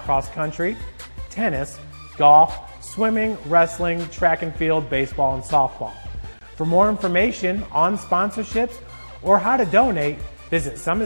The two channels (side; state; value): both; inverted; correlation -1.00